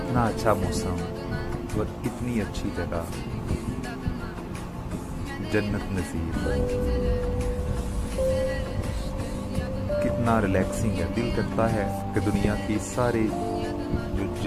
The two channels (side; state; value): both; identical; correlation 1.00